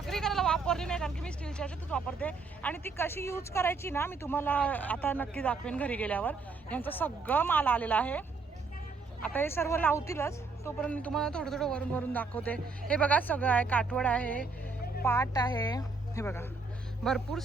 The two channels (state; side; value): quieter; left; 4.2 dB